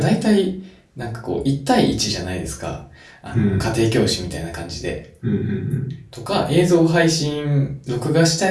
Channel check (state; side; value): identical; both; correlation 1.00